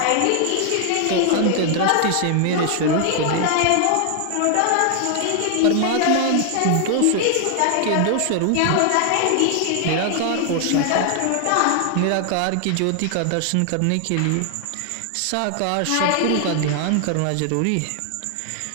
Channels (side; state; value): both; different; correlation 0.00